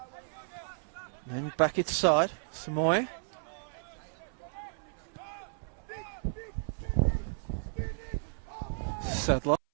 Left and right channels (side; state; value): left; silent; 56 dB below the other